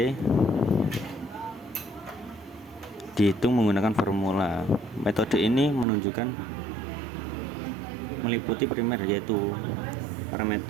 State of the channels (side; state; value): left; drops out; at 5.9 s